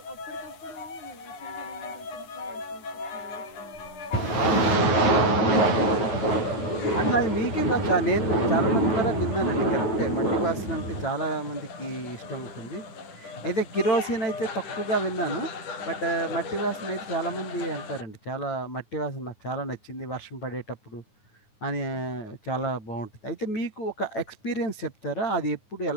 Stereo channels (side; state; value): right; late; 9.5 ms